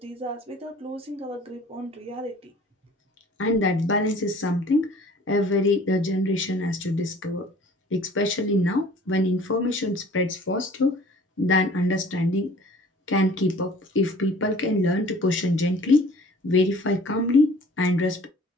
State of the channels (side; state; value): both; normal; correlation 0.50